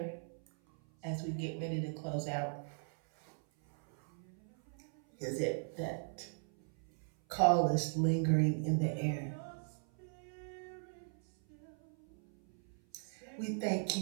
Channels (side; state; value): left; silent; 52 dB below the other